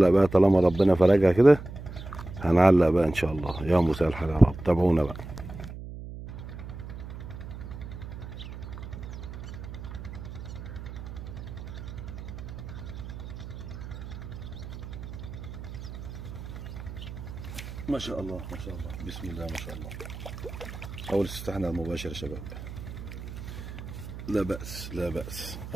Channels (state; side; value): noise; right; hum, 10 dB below the sound